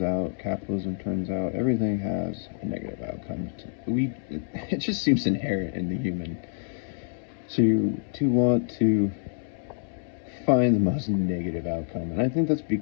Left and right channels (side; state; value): right; silent; digital silence